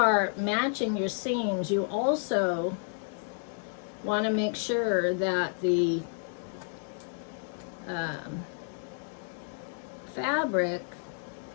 matching your seams, you also want to make sure that the fabric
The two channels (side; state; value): right; silent; 57 dB below the other